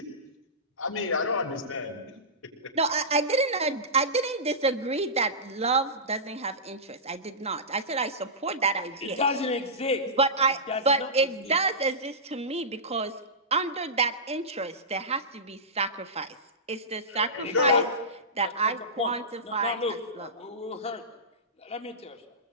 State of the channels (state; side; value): normal; both; correlation -0.18